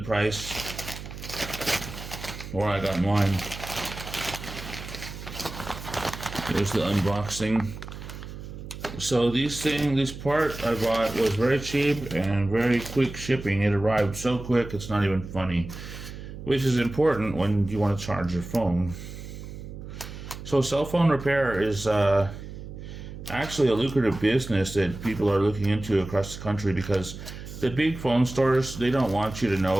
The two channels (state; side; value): noise; right; hum, 11 dB below the sound